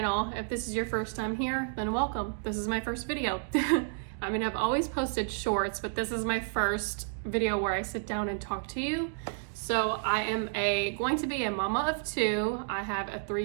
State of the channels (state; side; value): silent; left; digital silence